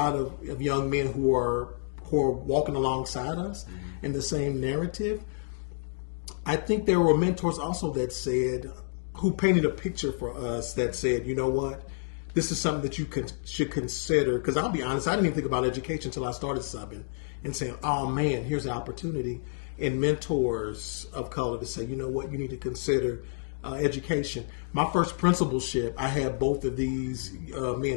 of young men who are walking alongside us in the same narrative. I think there were mentors also that said, who painted a picture for us that said, you know what, this is something that you should consider. Because I'll be honest, I didn't even think about education until I started subbing and saying, oh man, here's an opportunity. And mentors of color to say, you know what, you need to consider education. My first principalship, I had both of these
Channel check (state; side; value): silent; right; digital silence